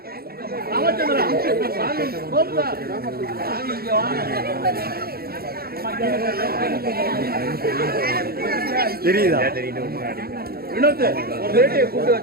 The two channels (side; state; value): left; late; 0.44 ms